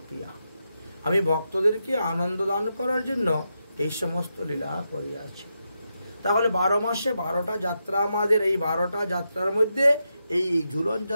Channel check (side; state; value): both; inverted; correlation -0.86